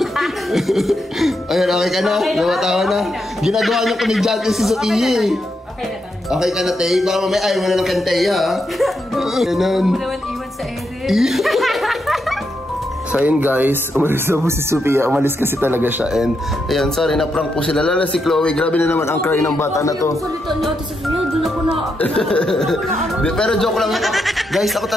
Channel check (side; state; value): both; normal; correlation 0.82